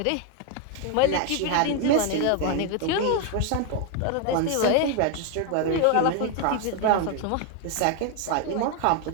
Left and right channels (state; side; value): different; both; correlation 0.01